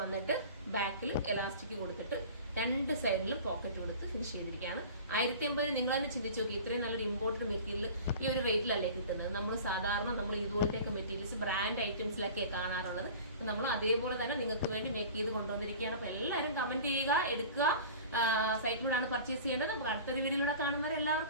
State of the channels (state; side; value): inverted; both; correlation -0.40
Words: ബാക്കിൽ എലാസ്റ്റിക് കൊടുത്തിട്ട് രണ്ട് സൈഡിലും പോക്കറ്റ് കൊടുത്ത് ഫിനിഷ് ചെയ്തിരിക്കുകയാണ്. 1080 നിങ്ങൾ തന്നെ ചിന്തിച്ചു നോക്കി, ഇത്രയും നല്ലൊരു ഇമ്പോർട്ടന്റ് മെറ്റീരിയൽ ഈ ഒരു വെയിറ്റിലല്ലേ കിട്ടുന്നത്. നമ്മൾ സാധാരണ നമ്മൾ ഇതുപോലത്തെയൊക്കെ മെറ്റീരിയൽസ് ബ്രാൻഡ് ഐറ്റംസിലൊക്കെയാണ് കാണാറുള്ളത്. നമ്മൾ അതേപോലെ തന്നെ നിങ്ങൾക്ക് വേണ്ടി മേക്ക് ചെയ്ത് കൊണ്ടുവന്നിരിക്കുകയാണ്. അപ്പോൾ എല്ലാവരും കമന്റ് ചെയ്യുക, എടുക്കുക. സൈറ്റിലൂടെയാണ് പർച്ചേസ് ചെയ്യേണ്ടത്. നമുക്ക് അടുത്തൊരു വീഡിയോയിലൂടെ കാണുന്നവരെ